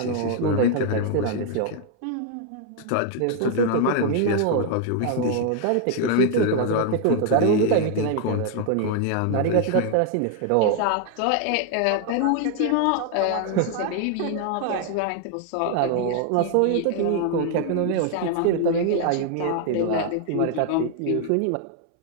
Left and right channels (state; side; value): different; both; correlation 0.00